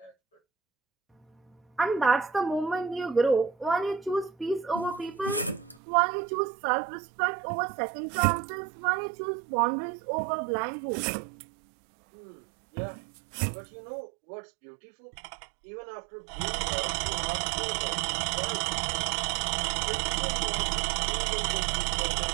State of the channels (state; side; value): drops out; left; at 5.8 s